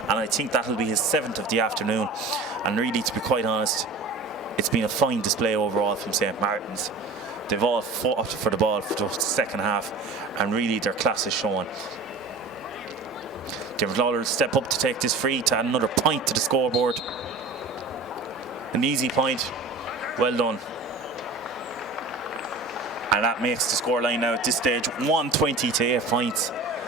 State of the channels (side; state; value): left; quieter; 3.6 dB